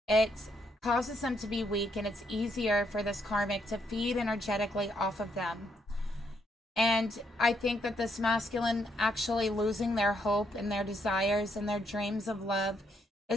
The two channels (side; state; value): both; normal; correlation 0.75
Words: It causes them to be weak, and it's easier for this karmic to feed energetically off of them. And I think that this masculine actually losing their hope and their desires and their dreams of love